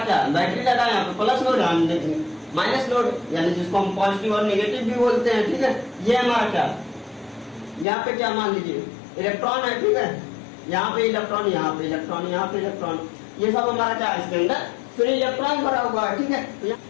क्या बैटरी लगा है, यहाँ पे प्लस लोड, हम देखेंगे माइनस लोड, यानी जिसको हम पॉजिटिव और नेगेटिव भी बोलते हैं। ठीक है, ये हमारा क्या, यहाँ पे क्या मान लीजिए इलेक्ट्रॉन है। ठीक है, यहाँ पे इलेक्ट्रॉन, यहाँ पे इलेक्ट्रॉन, यहाँ पे इलेक्ट्रॉन, ये सब हमारा क्या है? इसके अंदर फिर इलेक्ट्रॉन भरा हुआ है। ठीक है, तो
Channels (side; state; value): right; drops out; at 7.9 s